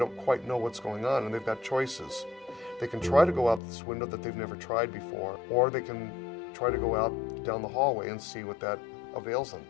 quite know what's going on, and they've got choices. They can try to go out this window that they've never tried before, or they can try to go out down the hallway and see what that avails them.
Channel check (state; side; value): drops out; right; at 3.6 s